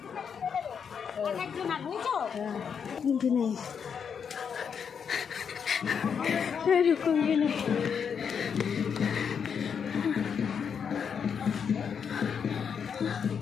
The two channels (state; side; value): quieter; right; 7.0 dB